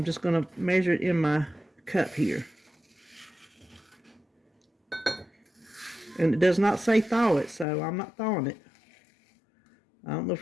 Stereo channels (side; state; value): right; drops out; at 7.7 s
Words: just going to measure it in my cup here. And it does not say thaw it, so I'm not thawing it. I don't know